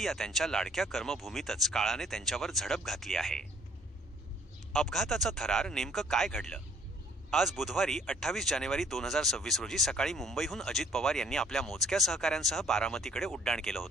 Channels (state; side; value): normal; both; correlation 0.60